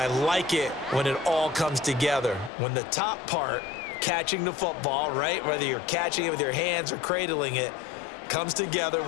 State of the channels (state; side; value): drops out; right; at 2.5 s